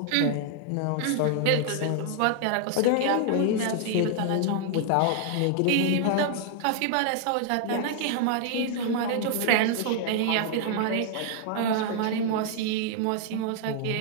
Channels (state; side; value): different; both; correlation 0.00